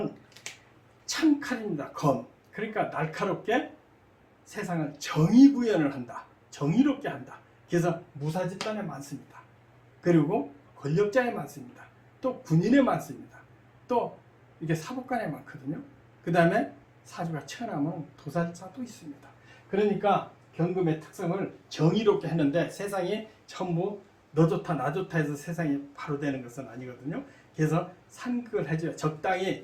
창칼입니다. 검. 그러니까 날카롭게 세상을 정의 구현을 한다. 정의롭게 한다. 그래서 무사 집단에 많습니다. 그리고 권력자에 많습니다. 또 군인에 많습니다. 또 이게 사법관에 많거든요. 그 다음에 사주가 천하면 도살자도 있습니다. 그러니까 경금의 특성을 정의롭게 했는데 세상이 전부 너 좋다 나 좋다 해서 세상이 바로 되는 것은 아니거든요. 그래서 상극을 해줘야 적당히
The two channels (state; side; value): identical; both; correlation 1.00